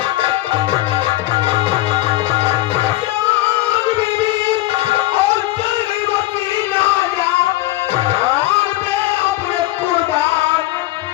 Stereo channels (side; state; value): right; quieter; 17.4 dB